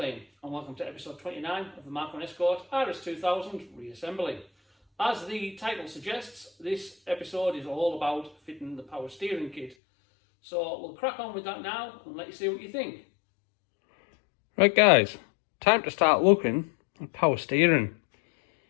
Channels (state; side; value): drops out; right; at 9.8 s